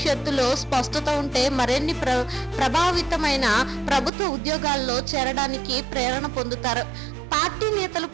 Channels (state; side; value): drops out; left; at 4.1 s